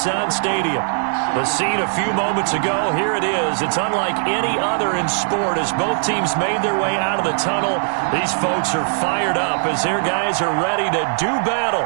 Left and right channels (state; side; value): silent; left; digital silence